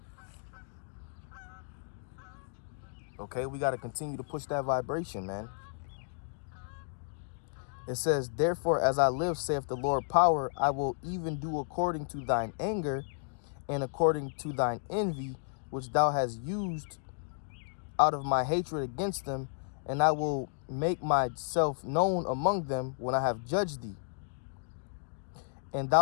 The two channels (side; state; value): right; silent; digital silence